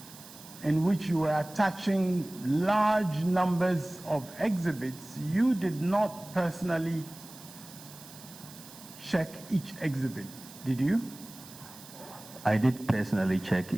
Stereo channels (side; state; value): right; noise; hiss, 18 dB below the sound